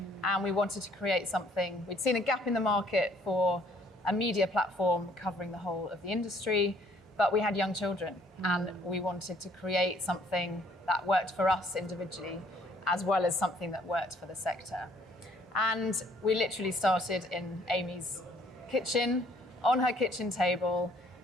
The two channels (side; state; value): both; normal; correlation 0.62